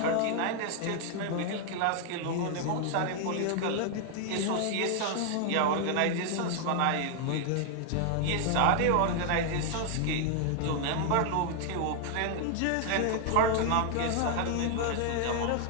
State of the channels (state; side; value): different; both; correlation 0.00